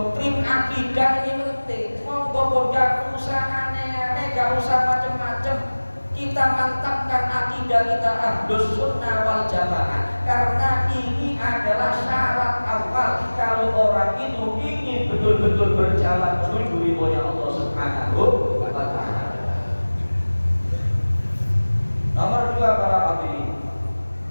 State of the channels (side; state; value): both; inverted; correlation -1.00